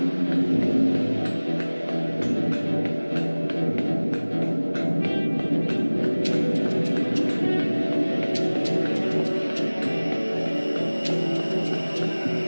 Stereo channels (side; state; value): both; inverted; correlation -1.00